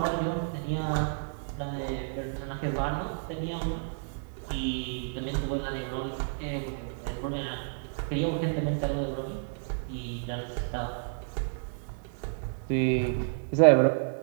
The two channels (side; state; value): left; silent; digital silence